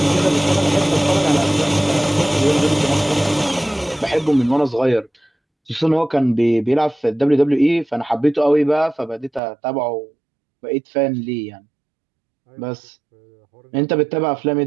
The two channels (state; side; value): drops out; left; at 9.4 s